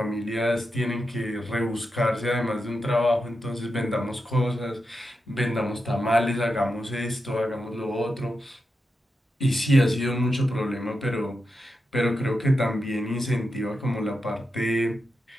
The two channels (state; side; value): normal; both; correlation 0.88